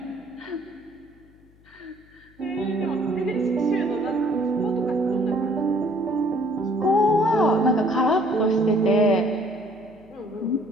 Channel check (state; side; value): noise; left; hum, 29 dB below the sound